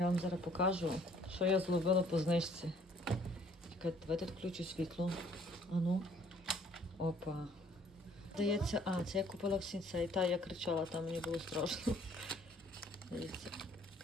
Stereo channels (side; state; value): both; normal; correlation 0.60